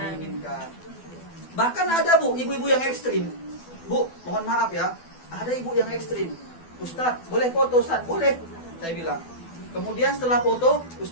Bahkan ada bu, ibu-ibu yang ekstrim. Bu, mohon maaf ya, ada ibu yang ekstrim. Ustadz, boleh foto Ustadz? Boleh, saya bilang. Kemudian setelah foto,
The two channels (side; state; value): right; late; 12 ms